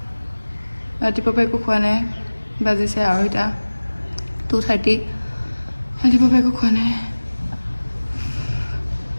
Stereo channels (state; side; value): inverted; both; correlation -1.00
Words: ৰাতিপুৱা একো খোৱা নাই বাজিছে 2:30 ৰাতিপুৱা একো খোৱা নাই